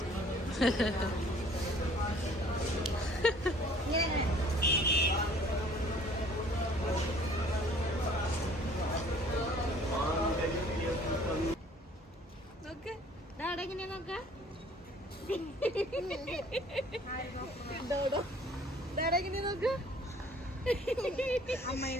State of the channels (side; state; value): both; normal; correlation 0.54